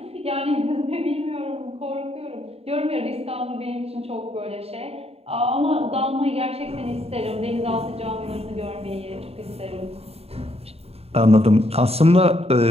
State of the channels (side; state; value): left; late; 0.29 ms